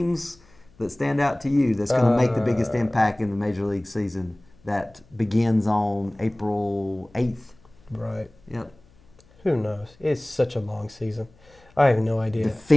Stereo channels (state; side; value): noise; left; hum, 29 dB below the sound